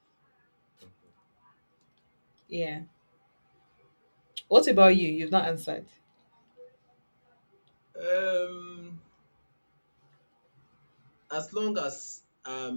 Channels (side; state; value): both; inverted; correlation -1.00